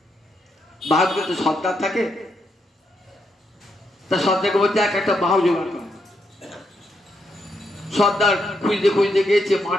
বাহাদুর তো সর্দার থাকে, তার সর্দারকে বলছে একটা বাহু জোগাড় করে। সর্দার খুঁজতে খুঁজতে গিয়েছে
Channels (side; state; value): both; normal; correlation 0.79